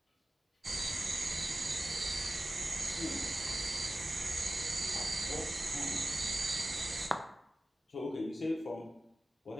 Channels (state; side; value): normal; both; correlation 0.95